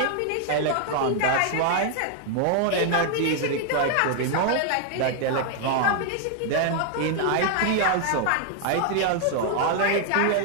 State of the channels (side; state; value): both; different; correlation 0.00